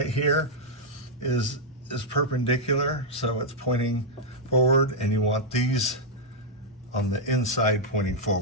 here is perpendicular, so it's pointing forward, and you want these on the inside pointing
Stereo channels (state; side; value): normal; both; correlation -0.04